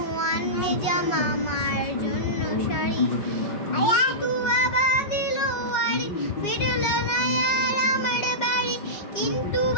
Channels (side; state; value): right; late; 5.3 ms